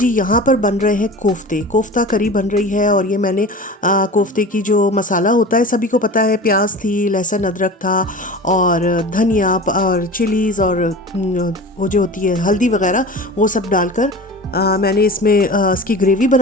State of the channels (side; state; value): both; normal; correlation 0.35